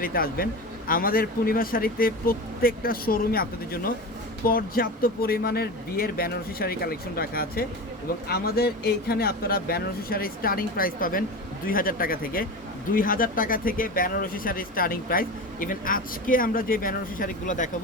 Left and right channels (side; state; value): both; normal; correlation 0.27